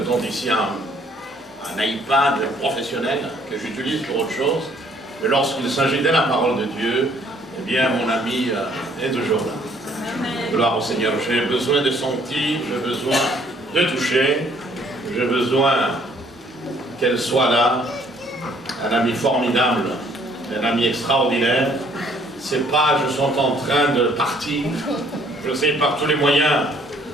temps ici un iPad professionnel que j'utilise pour autre chose. Mais lorsqu'il s'agit de la parole de Dieu, eh bien, mon ami est toujours là. Amen. Gloire au Seigneur. J'ai besoin de sentir, j'ai besoin de toucher, j'ai besoin qu'elle soit là. Un ami formidable, un ami extraordinaire. C'est pas je suis en train de partir. Je sais par tous les moyens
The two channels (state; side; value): normal; both; correlation 0.62